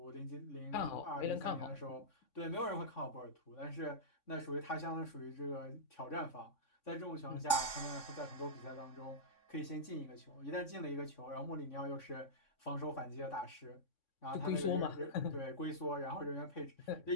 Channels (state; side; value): late; right; 3.6 ms